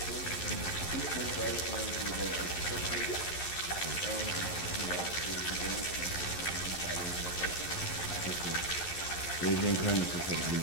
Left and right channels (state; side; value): late; right; 11 ms